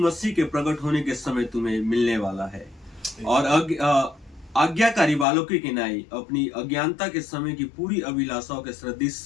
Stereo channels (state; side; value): drops out; right; at 5.2 s